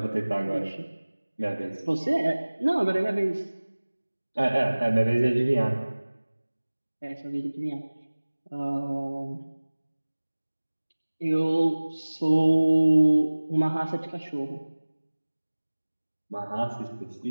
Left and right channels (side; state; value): both; inverted; correlation -1.00